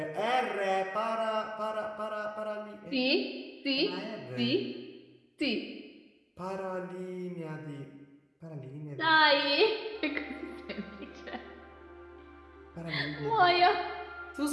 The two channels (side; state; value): both; identical; correlation 1.00